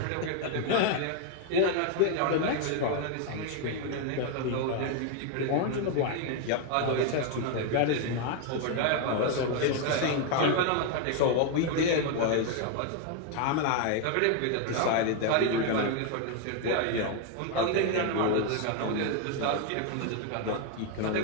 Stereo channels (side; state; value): both; different; correlation 0.01